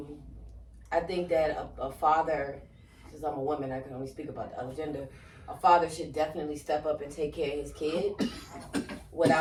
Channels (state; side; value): identical; both; correlation 1.00